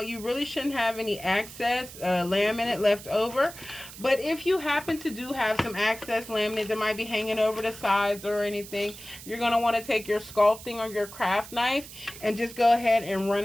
you really shouldn't have any excess laminate left over. But if you happen to do have some excess laminate that might be hanging over the sides or anything, you're going to want to take your sculpting or your craft knife and just go ahead and run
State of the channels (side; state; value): right; noise; hiss, 15 dB below the sound